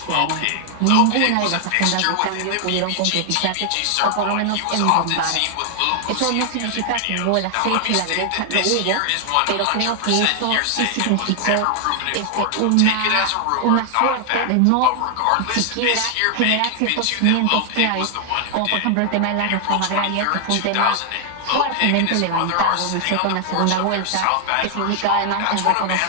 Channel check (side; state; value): both; different; correlation 0.00